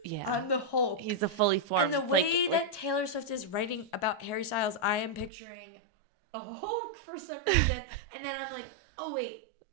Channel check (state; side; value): drops out; left; at 5.3 s